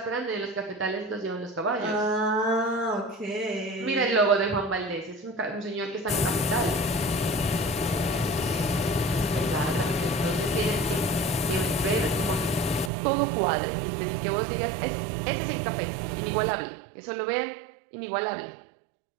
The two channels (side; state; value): left; drops out; at 12.9 s